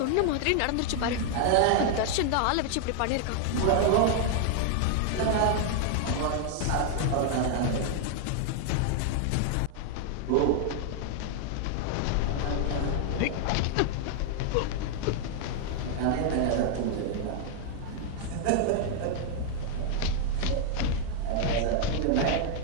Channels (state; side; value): different; both; correlation 0.00